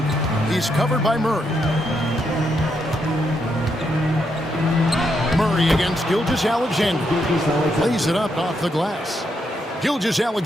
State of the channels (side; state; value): both; normal; correlation 0.79